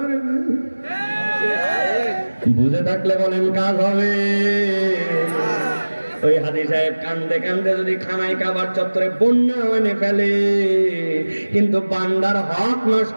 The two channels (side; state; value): both; inverted; correlation -1.00